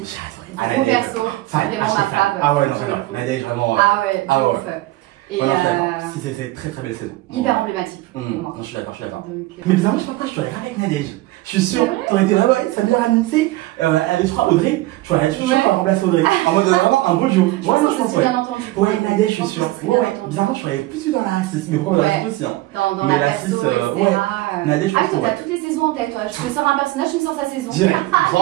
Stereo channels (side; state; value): left; quieter; 18.3 dB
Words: j'ai adoré. Un bon perso, c'est vraiment ma fave. Ah ouais, non, j'adore. Nadège, vraiment. Ah ouais, ouf. Et si c'est très belle saison. Hyper emblématique pour moi. Non, je suis d'accord. Mais bizarrement, je sais pas pourquoi je t'aurais pas avec Nadège. Je suis sûr, t'aurais été là, ça vient ramener, elle est, je crois, Audrey. Je suis sûr qu'on va remplacer Audrey. En mode vraiment un beau duo. Ouais, non, je pense, bien entendu. Ouais, Nadège, je suis sûr. Bizarrement, je serais plus dans la 6, mais pourquoi dans la 6 aussi, hein. Dans la 6, Nadège, ah oui, toi, t'as toutes les saisons en tête, toi. Je te sors un personnage, tu me sors sa saison. Direct,